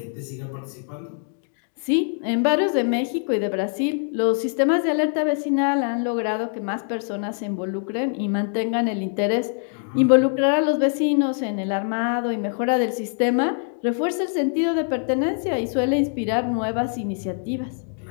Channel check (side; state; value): right; silent; 61 dB below the other